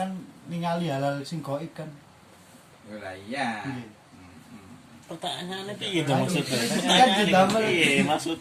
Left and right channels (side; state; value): both; identical; correlation 1.00